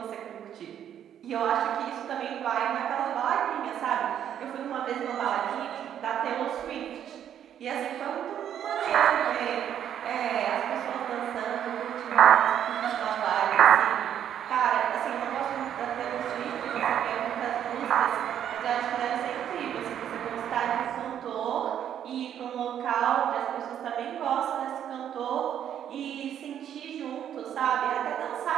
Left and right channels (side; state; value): left; quieter; 9.8 dB